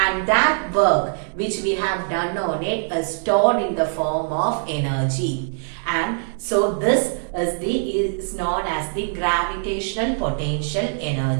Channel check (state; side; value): silent; left; 64 dB below the other